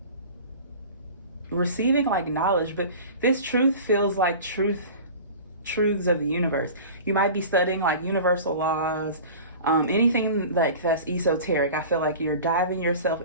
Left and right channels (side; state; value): both; inverted; correlation -0.38